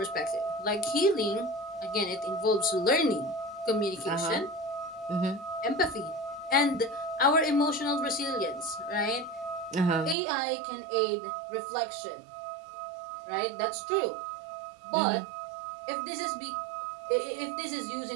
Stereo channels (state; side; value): drops out; left; at 10.2 s